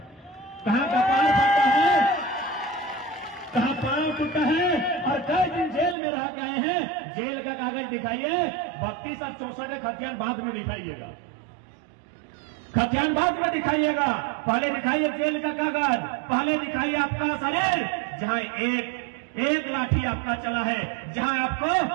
कहाँ कपाल फटा है, कहाँ पांव टूटा है और कई दिन जेल में रह गए हैं। जेल का कागज दिखाइए। 32 और 64 खतियान बाद में दिखाइएगा, खतियान बाद में दिखाइएगा। पहले दिखाइए जेल का कागज, पहले दिखाइए आपका शरीर जहां एक लाठी आपका चला है, जहां आपको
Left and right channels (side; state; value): left; drops out; at 6.0 s